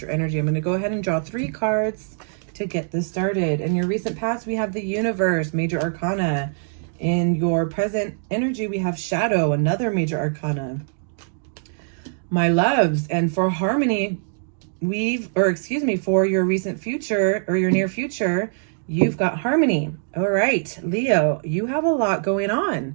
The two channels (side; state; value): left; silent; digital silence